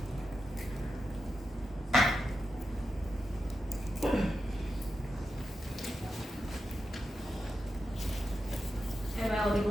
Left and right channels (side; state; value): both; normal; correlation 0.89